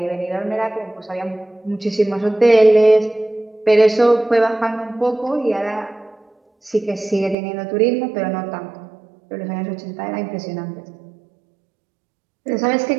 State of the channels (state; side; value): drops out; left; at 7.4 s